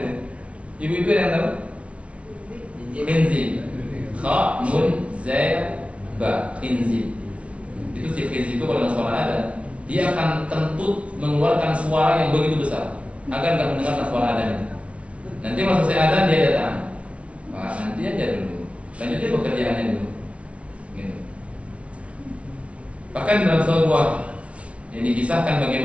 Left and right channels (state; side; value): late; left; 0.062 ms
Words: Ibu-ibu yang tahu? Khinzib. Kha, nun, zai, ba. Khinzib. Itu si khinzib itu kalau suara ada, dia akan kentut mengeluarkan suara yang begitu besar agar nggak mendengarkan suara adanya. Nanti masuk saya ada dia datang. Wah, nanti aja dulu. Lanjutin pekerjaannya dulu. Gitu. Bahkan dalam sebuah yang dikisahkan